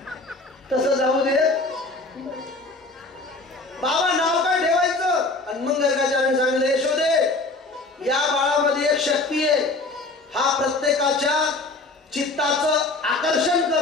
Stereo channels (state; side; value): quieter; right; 3.2 dB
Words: तसं जाऊ दे, बाबा नाव काय ठेवायचं. आणि मग गर्गाचार्याने सांगितलं यशोदे या बाळामध्ये एक शक्ती आहे, हा प्रत्येकाच्या चित्ताचं आकर्षण